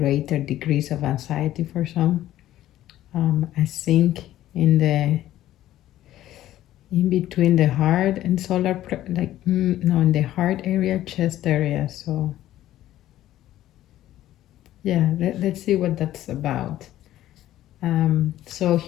degrees of anxiety for some. I think in between the heart and solar in the heart area, chest area. So let's see what that's about. So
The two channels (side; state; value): right; quieter; 13.6 dB